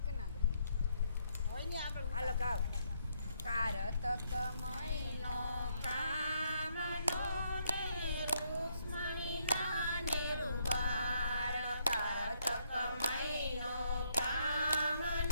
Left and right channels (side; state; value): both; inverted; correlation -0.73